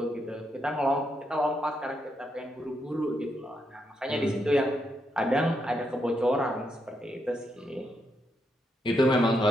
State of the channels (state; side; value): normal; both; correlation 0.80